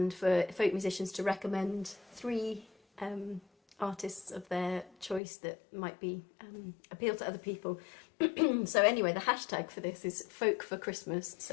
for folk musicians to recommend 3 artists of their choice that might be appeal to other people. So anyway, the hashtag for this is Folk for Christmas.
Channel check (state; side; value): drops out; right; at 5.2 s